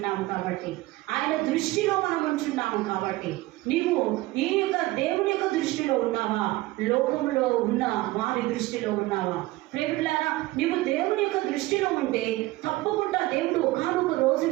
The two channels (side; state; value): left; quieter; 19.0 dB